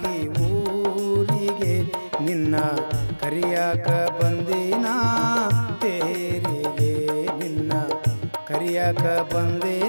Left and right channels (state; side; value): inverted; both; correlation -1.00